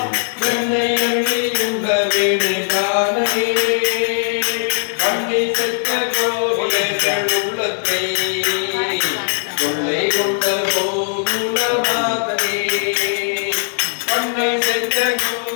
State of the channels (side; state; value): right; silent; digital silence